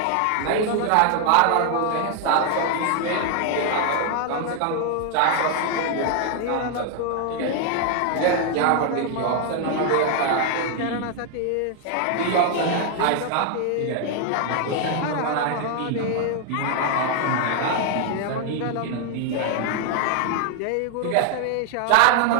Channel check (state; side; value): different; both; correlation 0.00